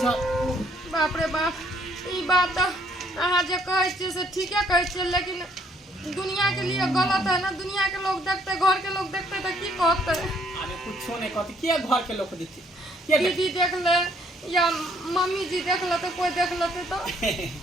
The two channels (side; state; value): both; normal; correlation 0.66